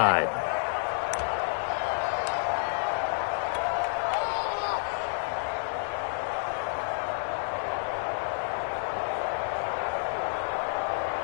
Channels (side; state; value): right; silent; digital silence